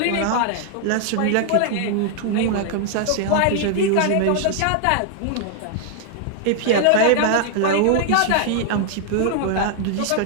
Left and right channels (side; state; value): both; different; correlation 0.00